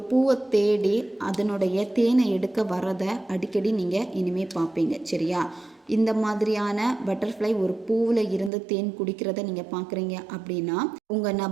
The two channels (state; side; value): drops out; left; at 8.5 s